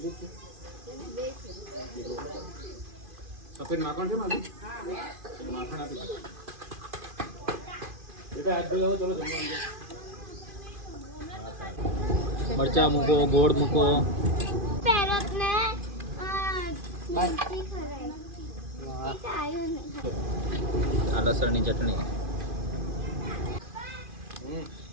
છે. સફેદ માખણ છે મારું? માખણ આપી દો. બેટા હાથ ધોઈ આવો, ચલો જમવા. મરચા મૂકો, ગોળ મૂકો. આ લસણની ચટણી.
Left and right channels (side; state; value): left; late; 2.5 ms